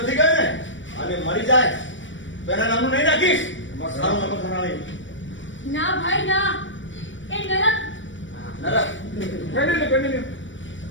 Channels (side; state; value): right; late; 0.56 ms